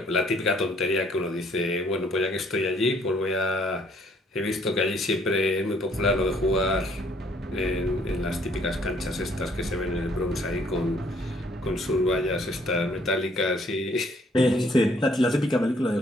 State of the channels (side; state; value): both; normal; correlation 0.63